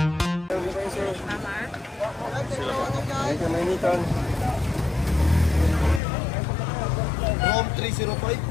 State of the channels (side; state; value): right; drops out; at 6.0 s